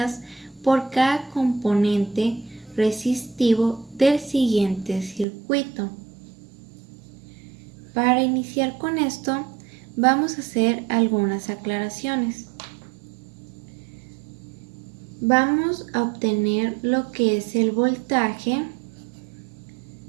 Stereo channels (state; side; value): drops out; left; at 5.2 s